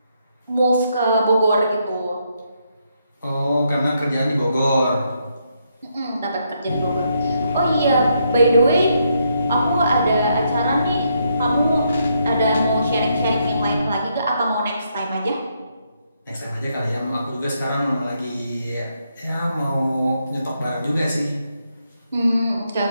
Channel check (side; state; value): both; inverted; correlation -0.77